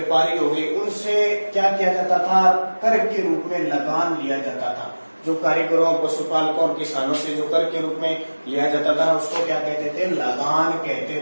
हो गए, उनसे क्या किया जाता था? कर के रूप में लगान लिया जाता था। जो कारीगरों, पशुपालकों और किसानों से जो कर के रूप में लिया जाता था, उसको क्या कहते थे? लगान कहते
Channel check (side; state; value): both; inverted; correlation -1.00